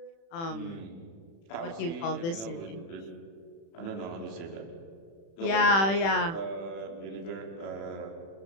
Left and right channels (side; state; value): right; late; 36 ms